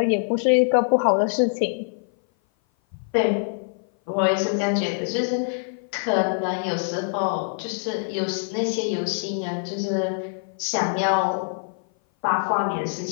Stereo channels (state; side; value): silent; right; 57 dB below the other